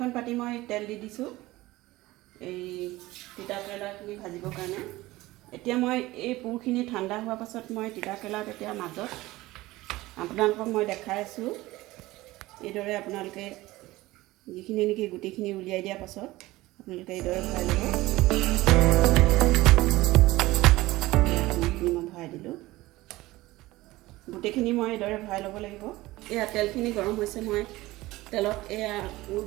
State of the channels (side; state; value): left; quieter; 18.6 dB